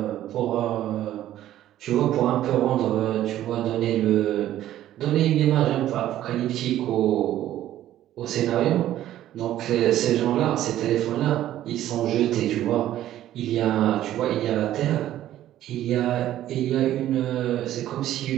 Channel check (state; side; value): quieter; left; 12.9 dB